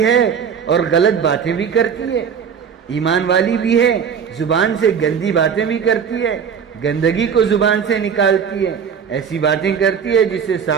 ہے اور غلط باتیں بھی کرتی ہے، ایمان والی بھی ہے، زبان سے گندی باتیں بھی کرتی ہے، گندگی کو زبان سے نکالتی ہے، ایسی باتیں کرتی ہے جس سے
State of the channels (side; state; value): left; quieter; 7.1 dB